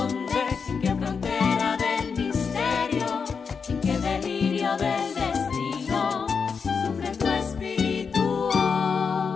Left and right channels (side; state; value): right; quieter; 5.7 dB